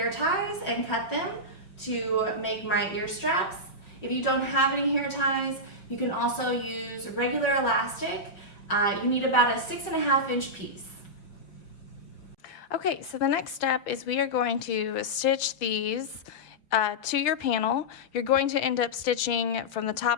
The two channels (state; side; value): late; right; 5.2 ms